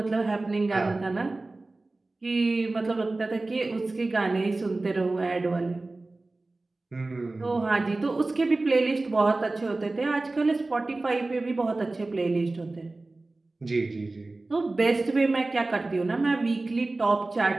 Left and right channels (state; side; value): quieter; left; 3.1 dB